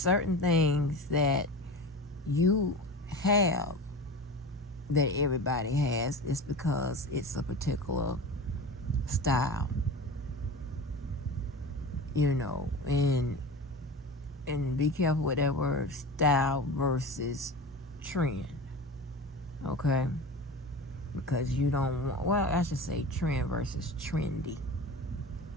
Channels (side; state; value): both; normal; correlation 0.31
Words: things that you have that everybody has. It's because it's a particular style, and be careful with that word, style versus trend, okay? Because you don't want, well, I should say trend versus trendy.